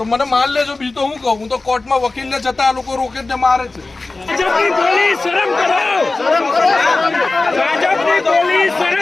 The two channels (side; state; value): right; quieter; 3.4 dB